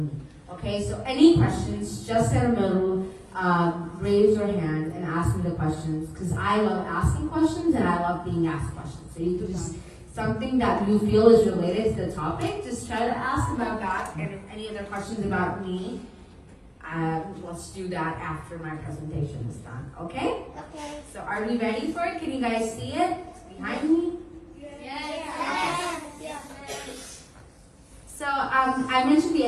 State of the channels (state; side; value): identical; both; correlation 1.00